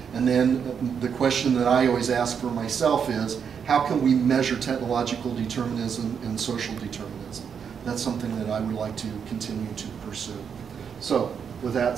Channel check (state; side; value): quieter; left; 7.1 dB